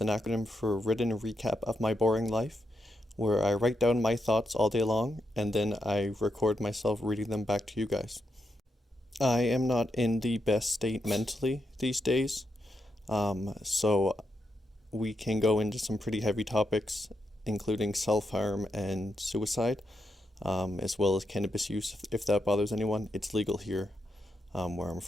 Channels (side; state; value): both; normal; correlation 0.84